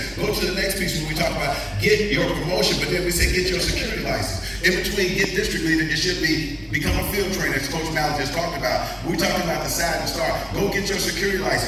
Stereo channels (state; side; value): identical; both; correlation 1.00